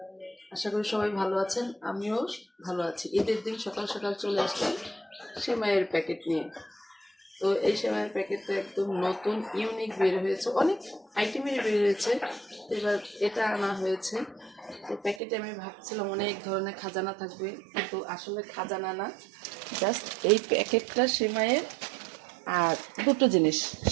আশা করি সবাই ভালো আছেন, আমিও ভালো আছি। ঈদের দিন সকাল সকাল চলে আসলাম সেমাইয়ের প্যাকেট নিয়ে। তো এই সেমাইয়ের প্যাকেটটা একদম নতুন ইউনিক বের হয়েছে, অনেক আইটেমের বের হয়েছে। এবার এটা আনা হয়েছে। তো প্যাকেটে আমি ভাবছিলাম অনেক ধরনের খাজানা থাকবে, কিন্তু আসলে খাজানা না, জাস্ট এই প্যাকেটটা সেমাইয়ের আর দুটো জিনিস,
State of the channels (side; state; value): left; drops out; at 15.2 s